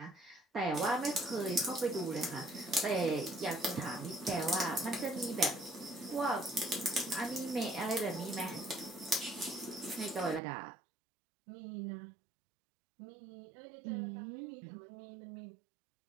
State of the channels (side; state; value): left; drops out; at 10.4 s